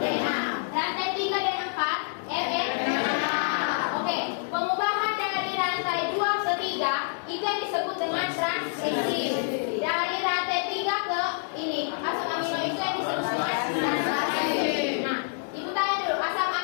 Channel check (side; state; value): right; silent; 60 dB below the other